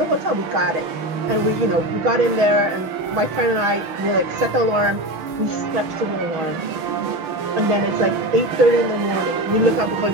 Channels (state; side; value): late; left; 6.7 ms